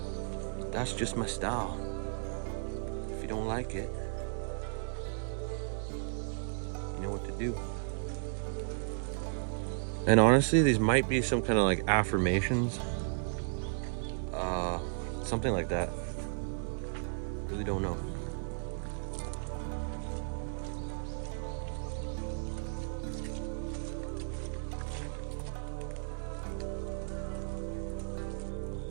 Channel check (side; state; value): left; silent; 55 dB below the other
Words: that's just my style. If you don't like it, you know what to do. And honestly, these might be some kind of like affirmations, something like that. Really don't know.